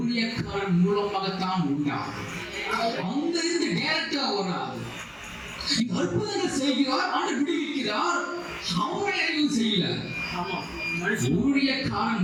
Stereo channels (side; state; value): both; identical; correlation 1.00